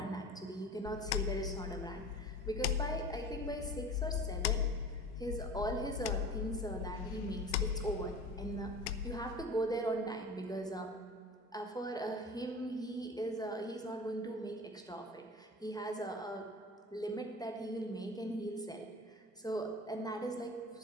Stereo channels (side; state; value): both; normal; correlation 0.37